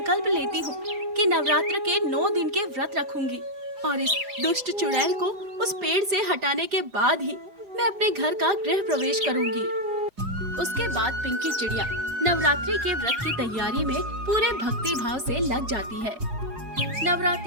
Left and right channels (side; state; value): left; late; 4.8 ms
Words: लेती हूँ कि नवरात्र के 9 दिन के व्रत रखूंगी और इस दुष्ट चुड़ैल को उस पेड़ से हटाने के बाद ही मैं अपने घर का गृह प्रवेश करूंगी। उसके बाद पिंकी चिड़िया नवरात्रि के व्रत की तैयारी में पूरे भक्ति भाव से लग जाती है।